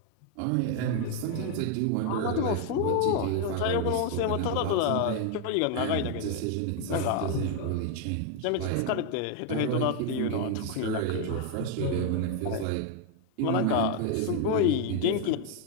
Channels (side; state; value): both; different; correlation 0.01